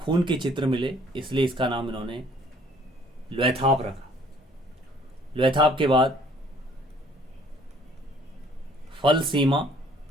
के चित्र मिले इसलिए इसका नाम इन्होंने लुएथाप रखा। लुएथाप के बाद फल सीमा,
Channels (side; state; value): both; normal; correlation 0.58